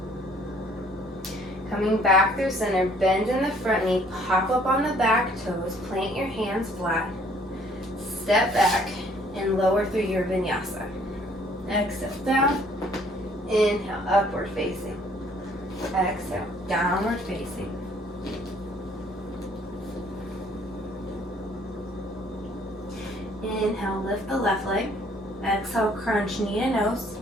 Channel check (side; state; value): both; normal; correlation 0.60